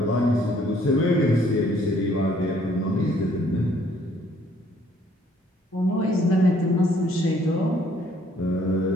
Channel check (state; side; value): normal; both; correlation 0.63